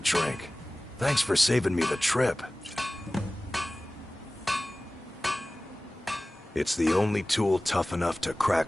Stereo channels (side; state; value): both; normal; correlation 0.97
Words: Thanks for saving me the trip. It's the only tool tough enough to